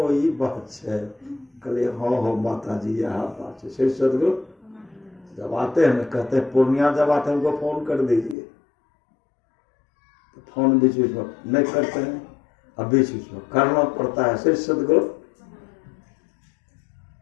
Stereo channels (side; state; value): right; drops out; at 8.3 s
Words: ये बात है, कहले हाँ हो माता जी यहाँ पास श्री सदगुरु जब आते हैं कहते हैं पूर्णिया जब आते हैं हमको फोन कर दीजिए, तो फोन बीच बीच में नहीं करते हैं, अब बीच बीच में करना पड़ता है। श्री सदगुरु